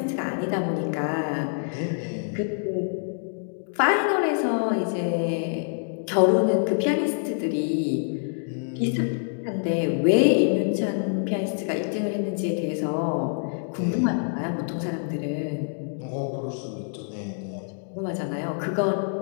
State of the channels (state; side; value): silent; right; digital silence